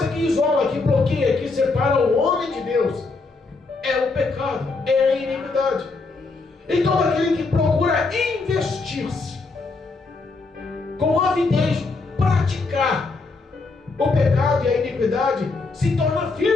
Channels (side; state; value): right; quieter; 3.8 dB